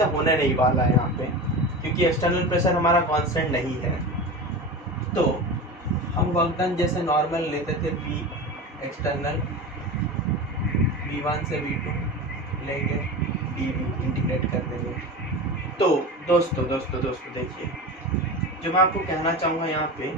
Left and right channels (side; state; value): both; normal; correlation 0.28